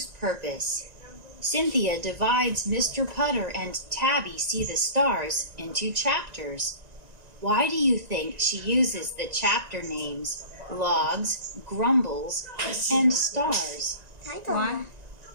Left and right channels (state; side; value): late; left; 1.9 ms